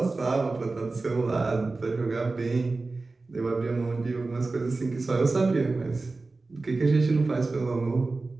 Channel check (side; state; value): left; quieter; 3.6 dB